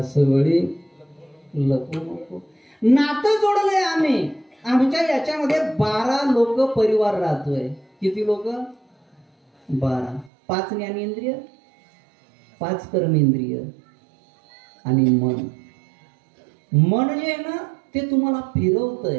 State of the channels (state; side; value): drops out; left; at 10.3 s